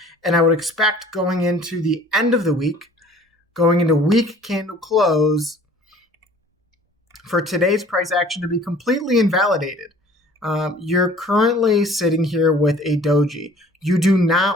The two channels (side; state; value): both; normal; correlation 0.51